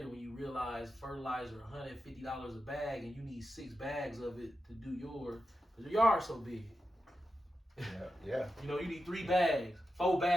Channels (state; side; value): normal; both; correlation 0.90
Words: when you realize fertilizer $150 a bag, and you need 6 bags of it to do yours, because your yard's so big. Yeah. You know, you need 3 bags, 4